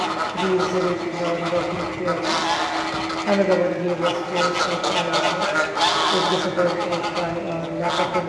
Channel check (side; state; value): both; identical; correlation 1.00